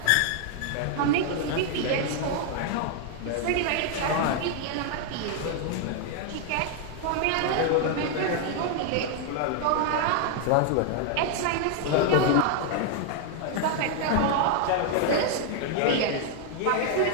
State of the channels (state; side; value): different; both; correlation 0.00